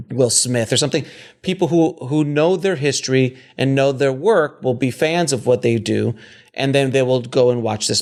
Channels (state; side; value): identical; both; correlation 1.00